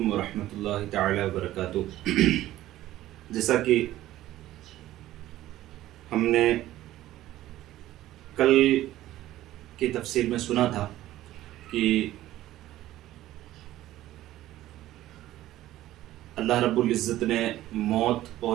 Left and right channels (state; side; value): quieter; left; 14.6 dB